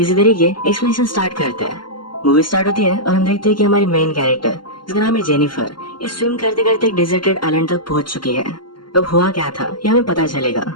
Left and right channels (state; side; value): late; right; 0.72 ms